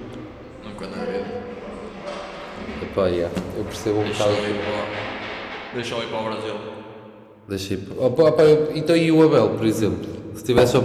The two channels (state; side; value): identical; both; correlation 1.00